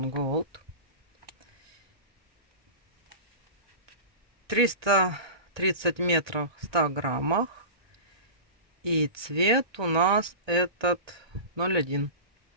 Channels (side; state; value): left; late; 1.3 ms